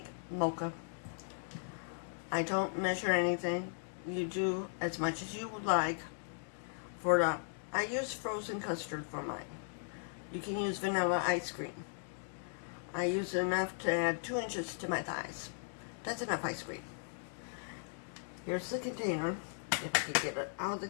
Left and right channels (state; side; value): silent; right; digital silence